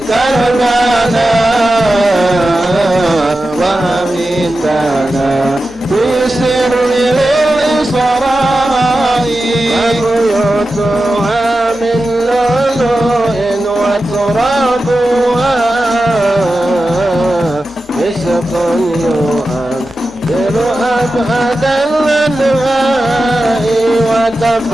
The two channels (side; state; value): both; normal; correlation 0.92